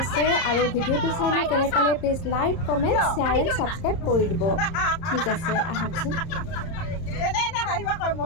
আৰু ভিডিঅ'টো চাই মই কেনে পালে please like comment share and subscribe কৰি দিব। ঠিক আছে, আহকচোন।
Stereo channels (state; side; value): late; right; 30 ms